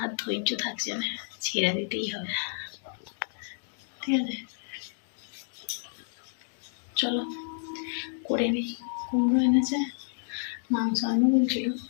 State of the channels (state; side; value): silent; right; digital silence